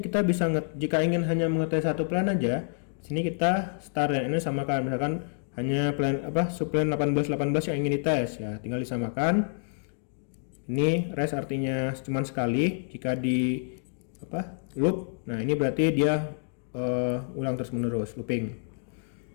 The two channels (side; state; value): right; silent; digital silence